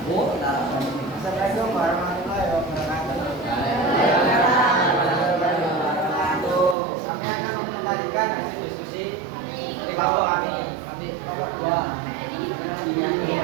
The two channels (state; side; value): drops out; left; at 6.8 s